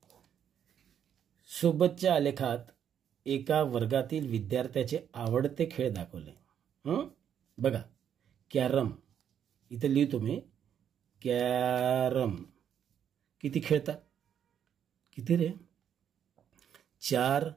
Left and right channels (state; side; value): quieter; left; 9.0 dB